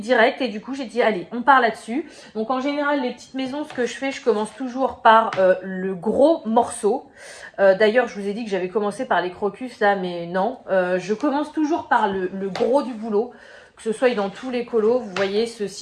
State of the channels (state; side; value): identical; both; correlation 1.00